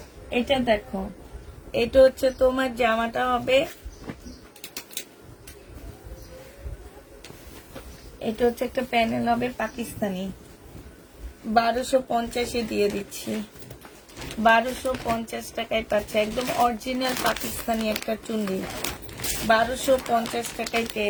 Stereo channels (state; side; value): identical; both; correlation 1.00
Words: এটা দেখো, এটা হচ্ছে তোমার জামাটা হবে, এটা হচ্ছে একটা প্যানেল হবে পাকিস্তানি, 1250 দিয়ে দিচ্ছি। 1250 টাকায় পাচ্ছে, একদম অরিজিনাল পাকিস্তানি একটা চুন্ডি, 1250 টাকায়